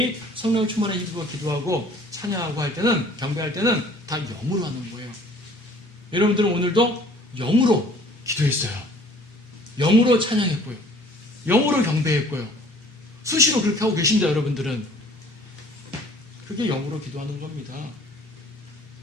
성령 충만을 힘입어 기도하고 찬양하고 할 때는 경배할 때는 다 영으로 하는 거예요. 여러분들은 오늘도 영으로 기도했어요. 영으로 찬양했고요. 영으로 경배했고요. 수시로 그렇게 하고 계신다 여러분들은. 그게 영으로 기도하는 겁니다.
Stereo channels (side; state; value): both; normal; correlation 0.53